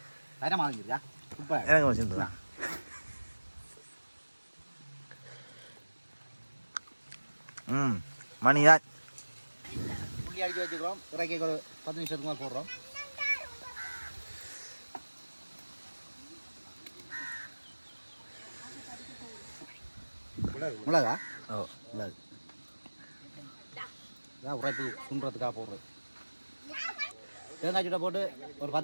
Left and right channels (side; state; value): both; inverted; correlation -1.00